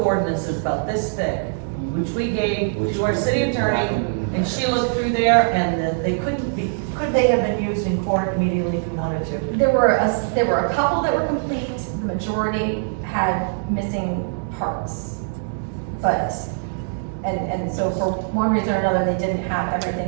ordinances about this thick, which we gave to our city attorney, and she looked through there, and they could they have been used in court immediately if we wanted to? There were a couple that were complete, the majority had missing parts. But, and so for one reason or another, they didn't have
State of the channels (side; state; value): left; silent; digital silence